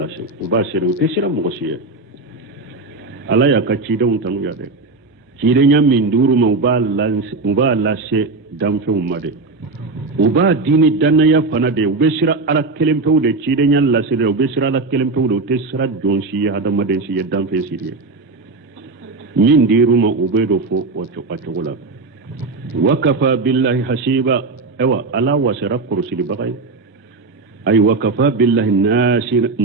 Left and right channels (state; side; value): quieter; left; 3.7 dB